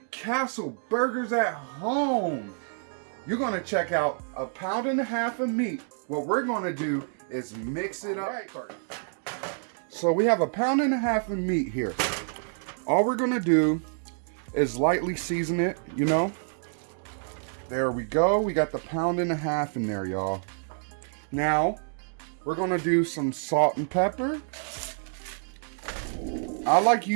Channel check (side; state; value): left; silent; digital silence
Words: Castle burgers at home. You're going to check out 1.5 pounds of meat. What we're going to do is mix it up first. So we have 1.5 pounds of meat here. All we're gonna do is lightly season it, you know. There we go. We got the 1.5 pounds in there, y'all. Now, we're gonna do some salt and pepper. I like